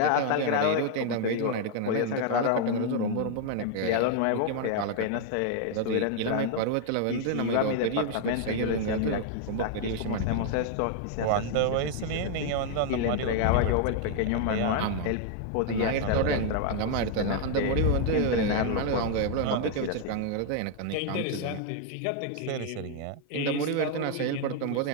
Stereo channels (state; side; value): different; both; correlation 0.00